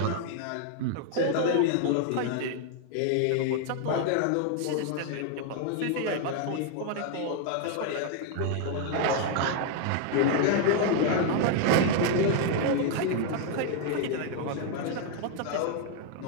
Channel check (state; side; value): different; both; correlation 0.00